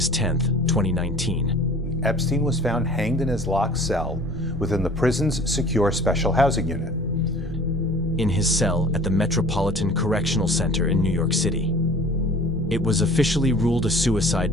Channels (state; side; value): normal; both; correlation 0.46